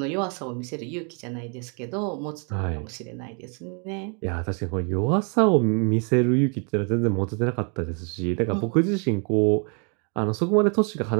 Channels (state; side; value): quieter; left; 37.4 dB